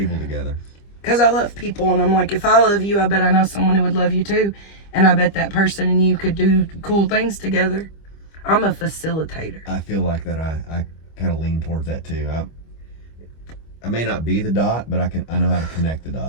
Because I love people, and I'm like, if I love you, I bet I know someone who would love you too. And I bet that person and you could do cool things together. I'm a facilitator. I feel like that I kind of lean towards that too. I may not be the dot, but I know how to connect the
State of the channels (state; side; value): late; right; 25 ms